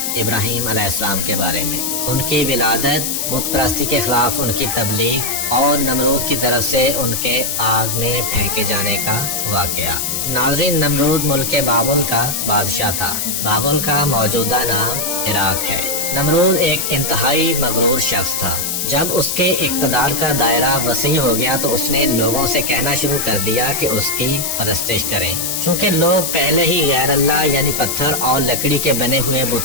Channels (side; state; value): left; noise; hiss, 1 dB below the sound